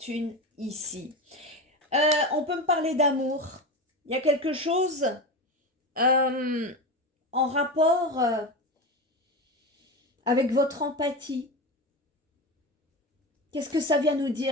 ici. On peut me parler d'amour. Il y a quelque chose en rapport avec votre empathie. Qu'est-ce que ça vient nous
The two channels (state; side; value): normal; both; correlation 0.22